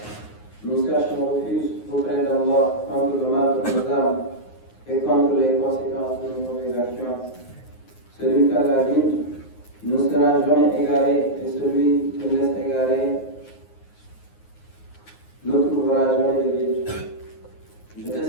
nous cherchons refuge auprès d'Allah contre le mal de nos âmes et contre les conséquences de nos mauvaises actions. Celui qu'Allah guide ne sera jamais égaré et celui qui laisse égarer ne trouvera jamais de guide. Je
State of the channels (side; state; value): right; late; 9.5 ms